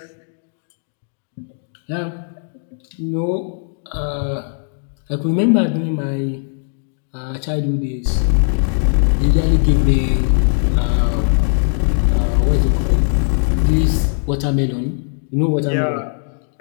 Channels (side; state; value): right; silent; digital silence